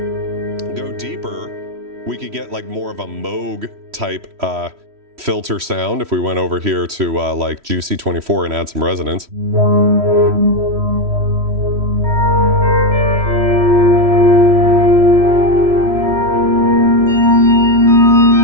Go deeper, we could get like more of a Moog type filter sound if we went over here to like Juicy 24 and add some resonance.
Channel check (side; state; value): left; late; 3.1 ms